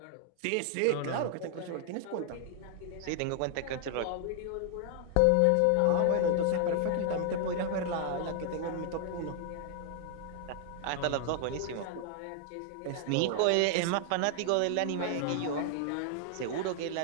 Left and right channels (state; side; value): different; both; correlation 0.00